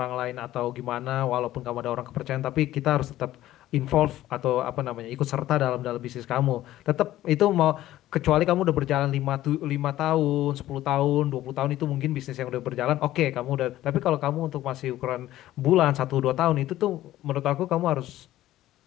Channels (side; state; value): right; quieter; 14.4 dB